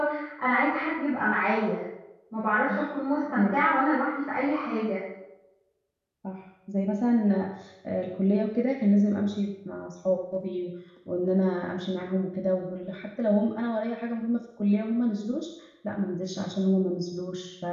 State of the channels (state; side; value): identical; both; correlation 1.00